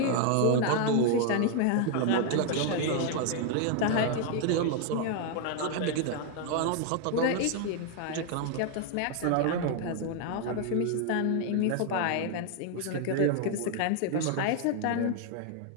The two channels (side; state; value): both; different; correlation 0.00